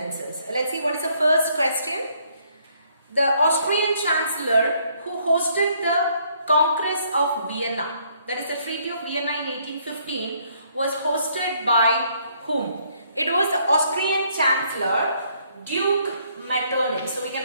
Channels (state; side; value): inverted; both; correlation -0.67